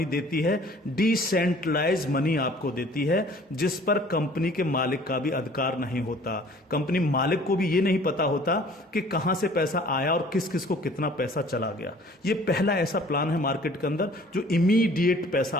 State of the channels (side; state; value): both; normal; correlation 0.52